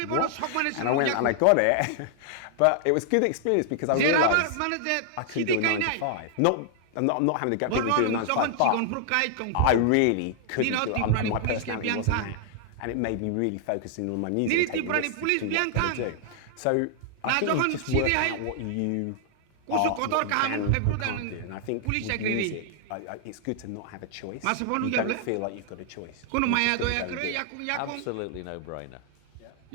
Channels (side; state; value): both; different; correlation 0.00